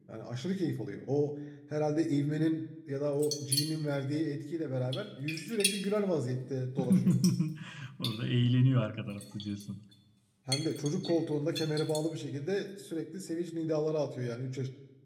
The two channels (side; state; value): both; identical; correlation 1.00